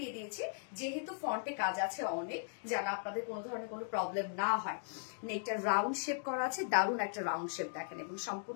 দিয়েছি যেহেতু ফ্রন্টে কাজ আছে অনেক, যেন আপনাদের কোনো ধরনের কোনো প্রবলেম না হয়। নেকটা রাউন্ড শেপ করা আছে, দারুণ একটা রাউন্ড শেপ দেখেন, এবং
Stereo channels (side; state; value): right; silent; digital silence